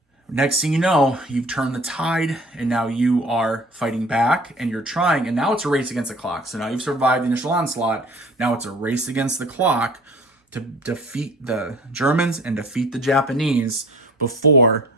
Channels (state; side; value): normal; both; correlation 0.47